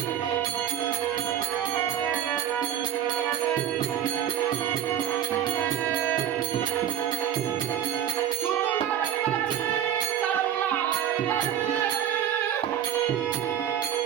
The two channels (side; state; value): left; quieter; 10.0 dB